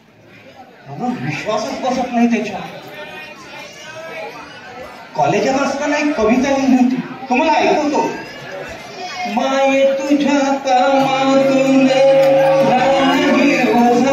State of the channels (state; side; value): identical; both; correlation 1.00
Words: मला विश्वासच बसत नाही त्याच्या. कॉलेजात असताना एक कविता लिहिली होती, तुम्हाला ऐकवतो. माये तुझ्या कामातून